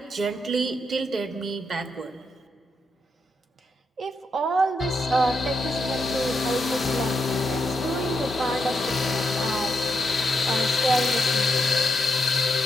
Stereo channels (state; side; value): normal; both; correlation 0.81